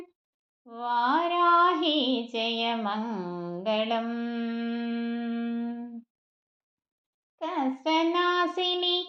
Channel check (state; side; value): identical; both; correlation 1.00